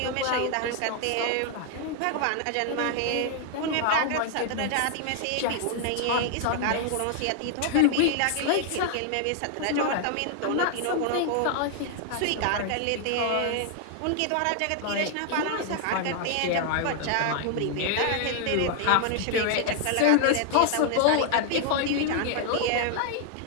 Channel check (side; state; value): both; different; correlation 0.00